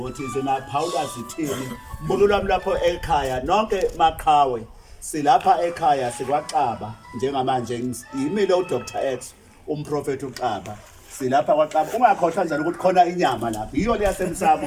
zinaphawula zithini mbulo lwami lapho ekhaya nonke maqhawe silapha ekhaya sikwaXaba njengamanje yimile uDr X umprofeti uXaba silapha kwaXaba ungakhohlwa njalo ukuthi khona inyama lapha iyo le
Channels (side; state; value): both; identical; correlation 1.00